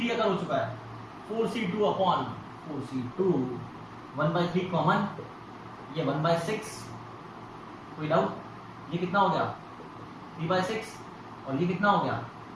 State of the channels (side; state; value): both; identical; correlation 1.00